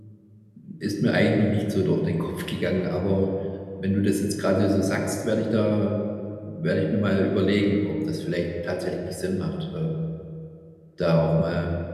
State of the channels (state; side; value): identical; both; correlation 1.00